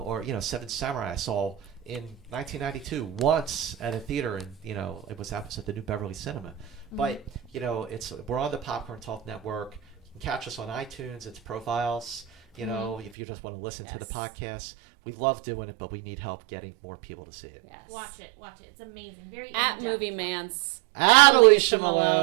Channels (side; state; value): left; drops out; at 13.1 s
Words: you know, Seven Samurai I saw in 1992 once at a theater, and you know it was at the New Beverly Cinema. But you know we're on the Popcorn Talk Network. You can catch us on iTunes. It's profiles. You know, if you just want to listen to the podcast, we love doing it, but we need help getting more people to see it. Yes. Watch it. It's amazing. Very At in-depth. Movie Mantz. At Alicia